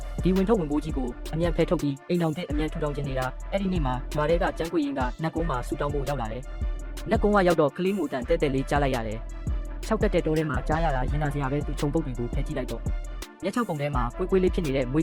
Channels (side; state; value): both; identical; correlation 1.00